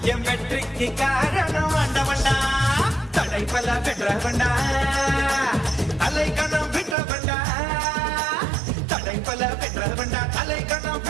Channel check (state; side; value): drops out; left; at 7.0 s